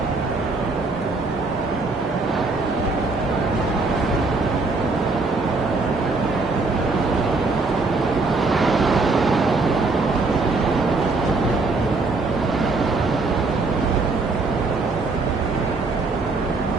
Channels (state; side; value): quieter; left; 3.7 dB